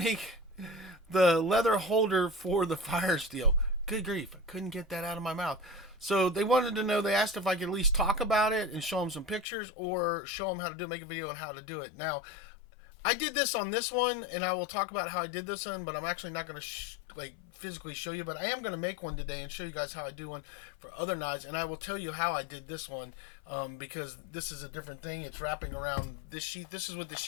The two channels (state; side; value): drops out; right; at 9.5 s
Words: the leather holder for the fire steel? Good grief, I couldn't get that out of my mouth. So they wanted to know, they asked if I could at least talk about it and show them some pictures or show them how to do it, make a video on how to do it. Now, I did this on this one and I will talk about how I did this one, but I'm actually not going to physically show you, but I am going to make one today and show you guys how I do one for other knives. And I will tell you how I did this one because this is a different thing. It's wrapping around this sheath. This is what the